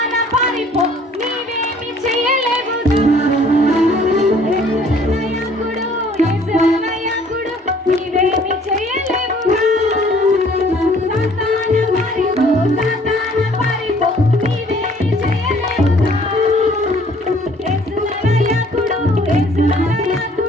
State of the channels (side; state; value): both; normal; correlation 0.57